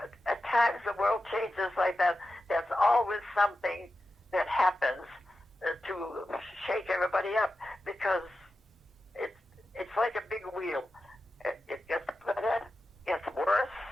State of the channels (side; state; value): both; normal; correlation 0.92